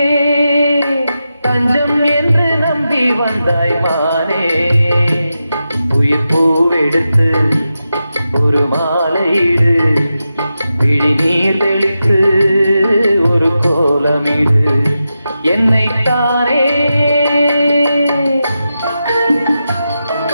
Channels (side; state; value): both; inverted; correlation -0.90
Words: தஞ்சம் என்று நம்பி வந்தாய் மானே. உயிர் பூவெடுத்து ஒரு மாலையிடு, விழி நீர் தெளித்து ஒரு கோலமிடு. என்னைத்தானே